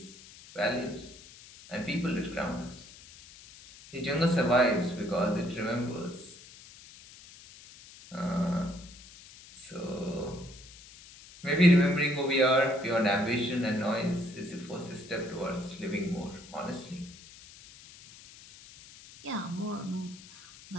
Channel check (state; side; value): noise; left; hiss, 20 dB below the sound